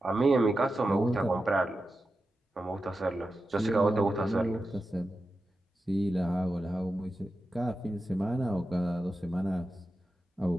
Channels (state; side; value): normal; both; correlation 0.91